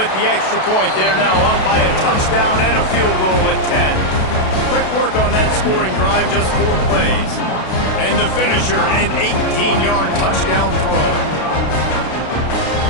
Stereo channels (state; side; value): late; right; 32 ms